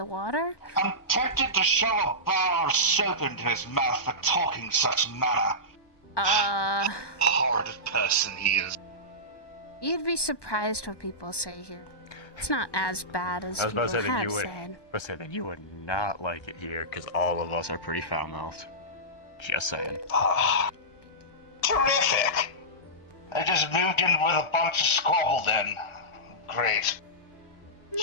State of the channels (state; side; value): late; right; 1.2 ms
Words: water. I'm tempted to shove a bar of soap into his mouth for talking such manner. Horrid person he is. You'd be surprised what people say here. It's not as bad as I was people about to say that have you would. said. But say that you would not like it here, because all of us are pretty foul-mouthed. Just saying. Terrific! I just moved in with a bunch of squabble then. Great.